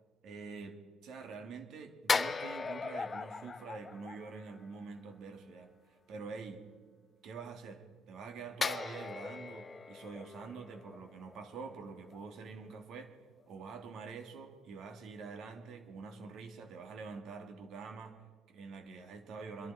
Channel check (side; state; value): both; normal; correlation 0.80